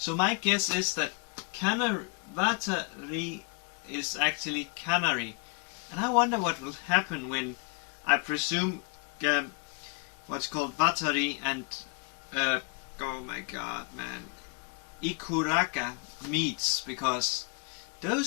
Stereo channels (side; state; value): right; quieter; 33.2 dB